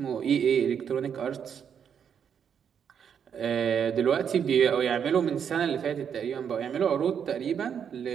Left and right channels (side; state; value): left; quieter; 7.8 dB